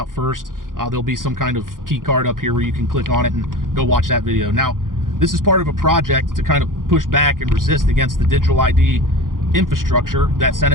first. There'll be some kind of key card up here where you can click on it and go watch that video. Now, this is part of a project to kind of push back and resist against the digital ID infrastructure that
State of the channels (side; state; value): left; late; 0.90 ms